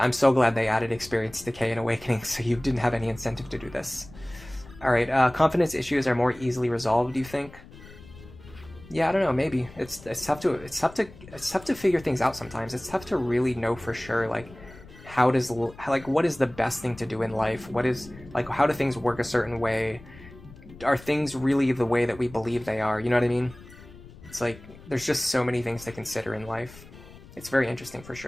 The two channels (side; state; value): left; noise; rumble, 19 dB below the sound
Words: so glad they added experience decay and awakening, so you didn't have any incentive to do this. All right, confidence issues are more easily resolved, do you think? Yeah, I don't know. Maybe it's tough to figure things out sometimes. It's tough to really know for sure, like, what is the best thing to do in life? What is, like, how do things work a certain way? Are things really the way that we believe they are? You know what I mean? It's like, there's just so many things to consider in life. It's very interesting for